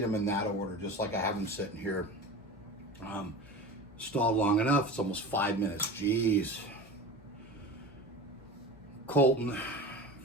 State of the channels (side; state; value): left; noise; hum, 26 dB below the sound